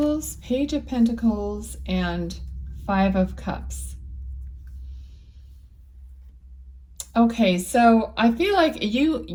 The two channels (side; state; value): both; identical; correlation 1.00